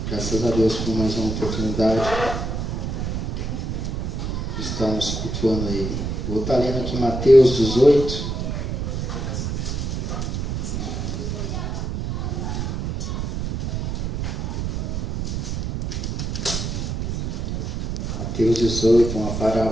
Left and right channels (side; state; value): right; noise; rumble, 2 dB below the sound